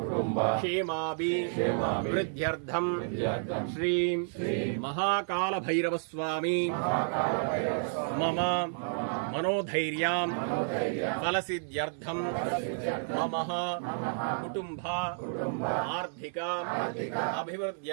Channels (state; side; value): silent; left; 57 dB below the other